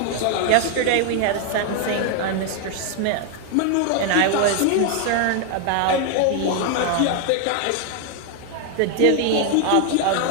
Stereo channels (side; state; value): both; different; correlation 0.00